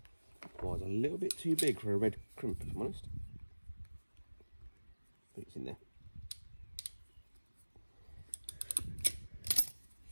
was a little bit too big for a red crimp, if I'm honest. I think it's in there.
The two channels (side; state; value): both; inverted; correlation -1.00